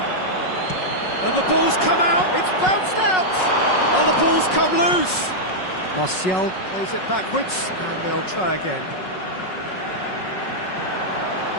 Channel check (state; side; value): late; right; 5.4 ms